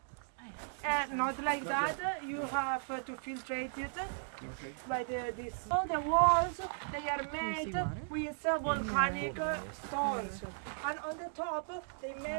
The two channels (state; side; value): silent; left; digital silence